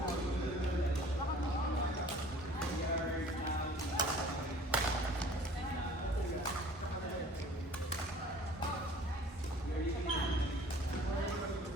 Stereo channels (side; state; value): both; normal; correlation 0.49